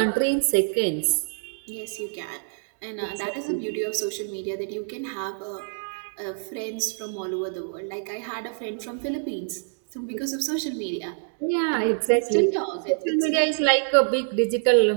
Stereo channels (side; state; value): left; silent; digital silence